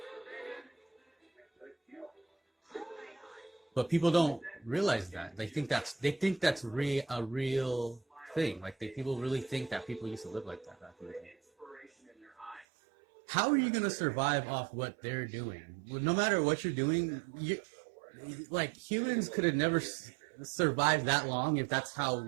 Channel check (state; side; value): drops out; left; at 12.7 s